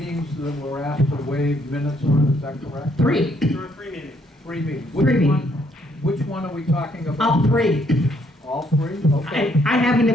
that we're asked to waive minutes on, is that correct? Three. There are 3 meetings. Three meetings. Three Which one are we talking about? All three. All three? Okay. I have an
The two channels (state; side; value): normal; both; correlation 0.69